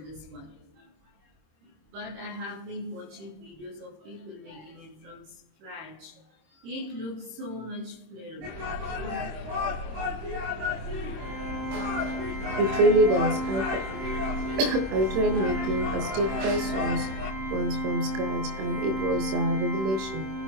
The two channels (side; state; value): left; late; 26 ms